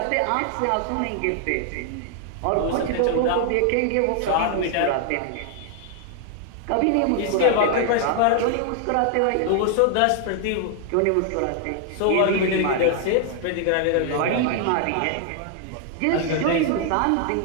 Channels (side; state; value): both; different; correlation 0.00